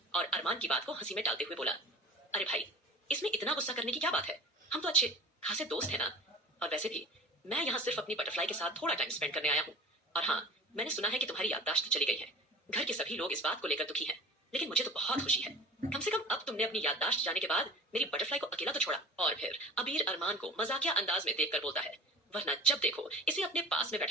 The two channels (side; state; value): both; normal; correlation 0.40